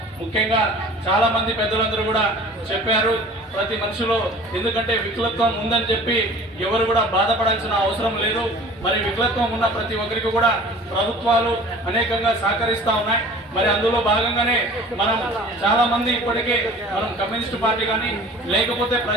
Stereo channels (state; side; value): normal; both; correlation 0.44